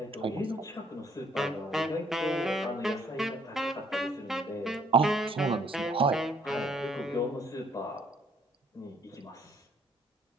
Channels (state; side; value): normal; both; correlation 0.65